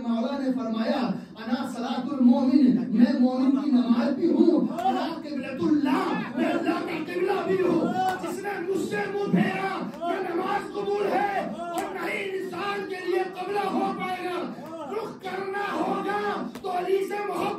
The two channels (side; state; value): both; identical; correlation 1.00